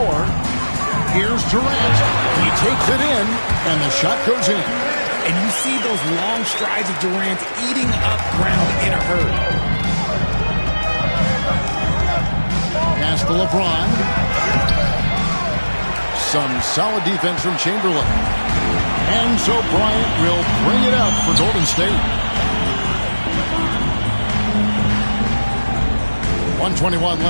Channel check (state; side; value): inverted; both; correlation -1.00